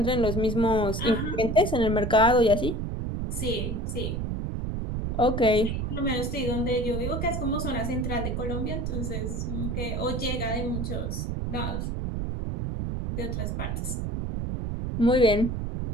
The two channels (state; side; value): noise; right; rumble, 2 dB below the sound